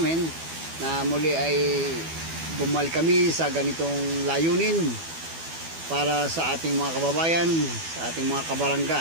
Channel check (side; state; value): left; late; 12 ms